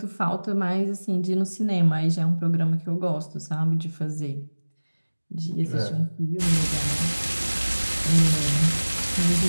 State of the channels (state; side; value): inverted; both; correlation -1.00